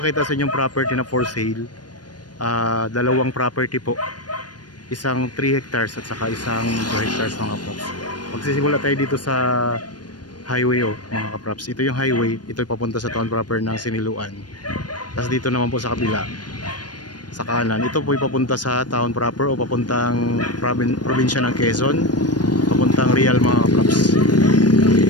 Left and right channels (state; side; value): late; right; 0.69 ms